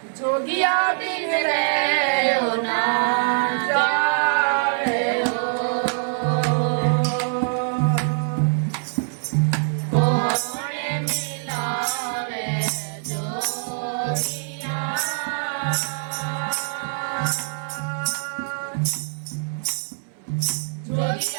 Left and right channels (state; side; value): silent; left; 63 dB below the other